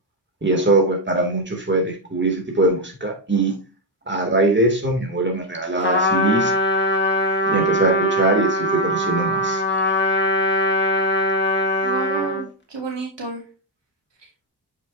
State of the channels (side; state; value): both; normal; correlation 0.02